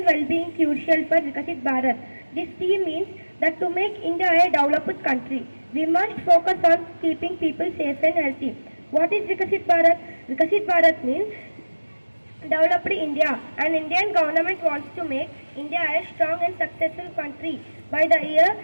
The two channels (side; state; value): both; inverted; correlation -1.00